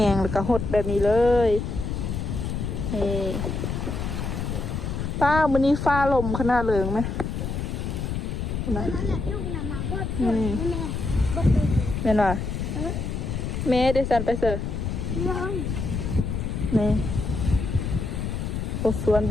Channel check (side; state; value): left; noise; rumble, 3 dB below the sound